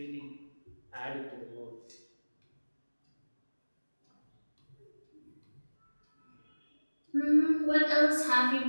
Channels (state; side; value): inverted; both; correlation -1.00